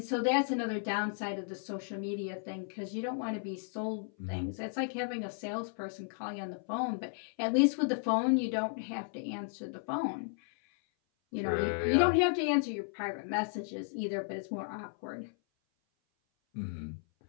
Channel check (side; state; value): right; silent; 55 dB below the other